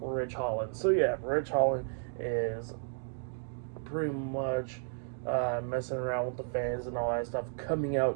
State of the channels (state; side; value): silent; left; digital silence